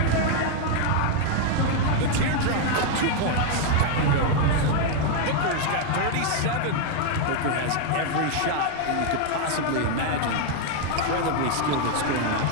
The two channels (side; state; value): both; different; correlation 0.00